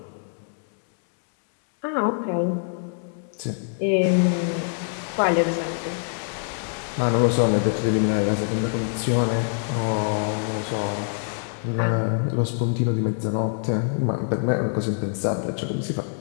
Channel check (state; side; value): silent; right; digital silence